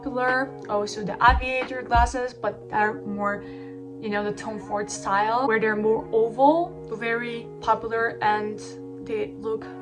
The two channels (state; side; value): identical; both; correlation 1.00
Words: also the aviator glasses, but they're more, you know, the Tom Ford style, where they're more oval, very popular, and they look